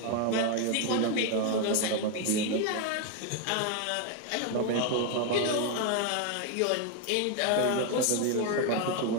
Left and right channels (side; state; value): both; different; correlation 0.01